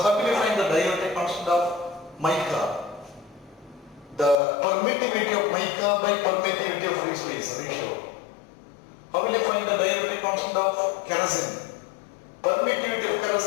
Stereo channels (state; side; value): drops out; right; at 4.4 s